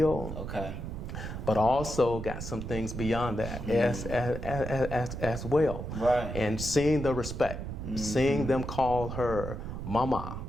Okay. But also got some things beyond that as well. Right. And seeing the respect, seeing them call her mama,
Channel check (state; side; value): noise; right; rumble, 6 dB below the sound